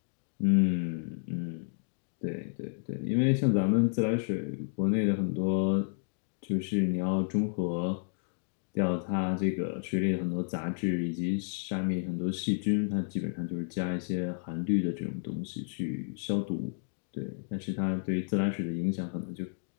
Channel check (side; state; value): right; silent; digital silence